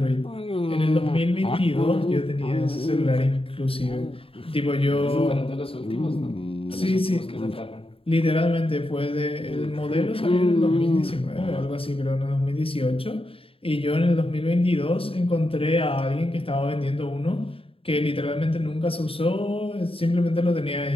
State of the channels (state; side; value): late; right; 0.27 ms